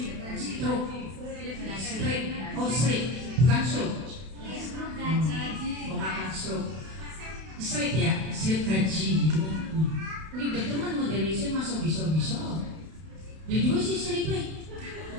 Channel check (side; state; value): left; late; 32 ms